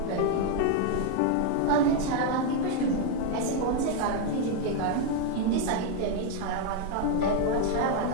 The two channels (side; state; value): both; different; correlation 0.01